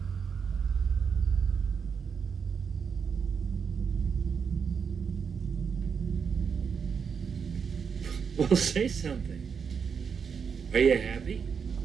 Well, say something. Are you happy?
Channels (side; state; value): left; quieter; 6.4 dB